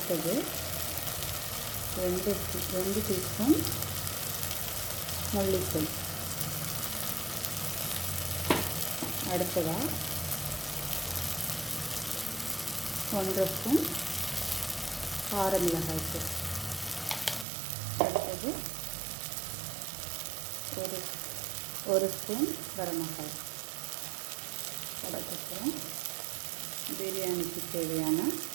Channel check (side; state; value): left; drops out; at 17.4 s